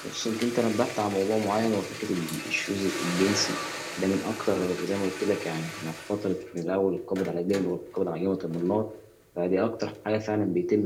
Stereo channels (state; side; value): identical; both; correlation 1.00